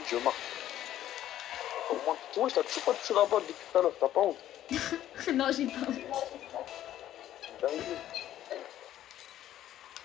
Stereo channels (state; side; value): quieter; right; 12.4 dB